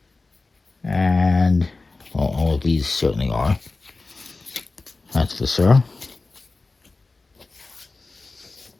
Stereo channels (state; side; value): quieter; right; 3.6 dB